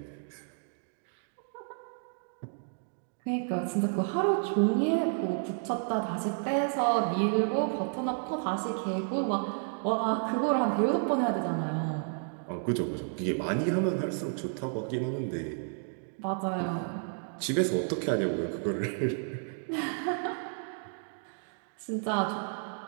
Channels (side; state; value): left; silent; 57 dB below the other